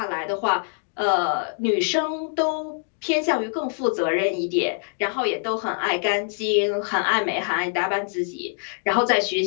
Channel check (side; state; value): right; silent; digital silence